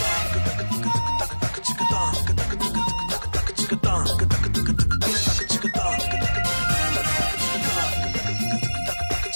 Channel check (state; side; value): inverted; both; correlation -1.00